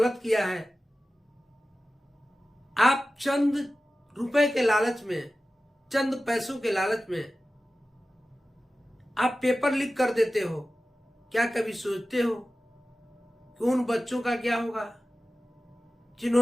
किया है। आप चंद रुपए के लालच में, चंद पैसों के लालच में आप पेपर लीक कर देते हो। क्या कभी सोचते हो कि उन बच्चों का क्या होगा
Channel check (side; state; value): both; normal; correlation 0.95